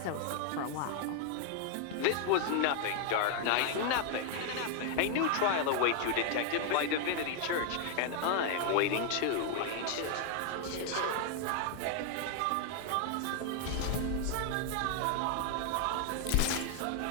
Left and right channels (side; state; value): both; different; correlation 0.00